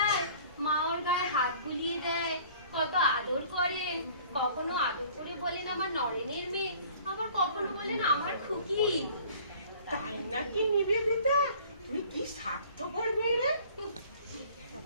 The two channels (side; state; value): both; inverted; correlation -0.51